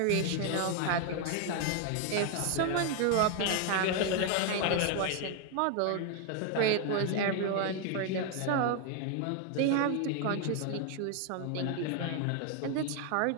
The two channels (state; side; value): different; both; correlation 0.00